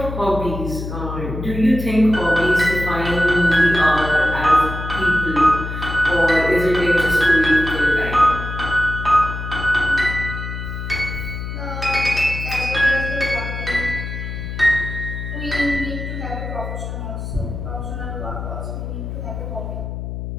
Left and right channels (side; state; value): left; noise; hum, 6 dB below the sound